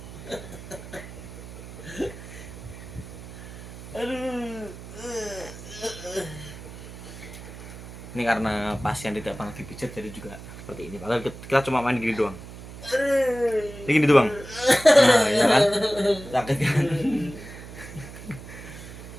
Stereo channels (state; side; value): noise; right; hum, 13 dB below the sound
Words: Ini karena pasien tidak pernah dipijat jadi juga seperti ini. Padahal kita cuma main gini doang. Ini gini doang. Nah, ya kan? Sakit kan?